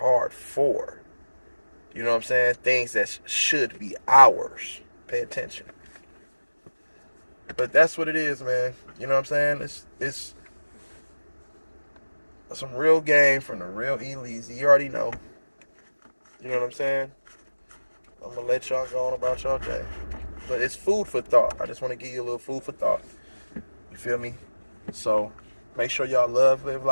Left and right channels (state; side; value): inverted; both; correlation -1.00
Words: for. You know what I'm saying? Things that should be ours. Pay attention. But that's what it is, man. You know what I'm saying? It's some real game from the real E-Leezy. You already know. You know what I'm saying? I'm going to let y'all go on about y'all day. But it's food for thought. I just want to give you a little food for thought. You feel me? So make sure y'all live